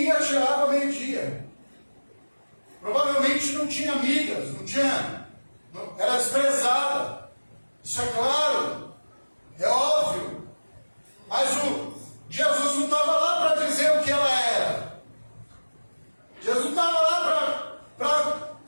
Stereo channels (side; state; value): both; inverted; correlation -1.00